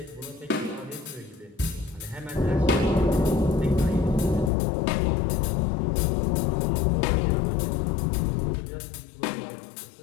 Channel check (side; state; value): right; drops out; at 4.5 s